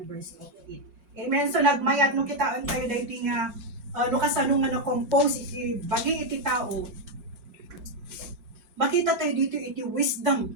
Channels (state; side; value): late; left; 5.5 ms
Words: of it. Amen. So nagmayat nung kitaan tayo dahil nga no kasanong nga na-compose iti bagi iti tao, makita tayo dito iti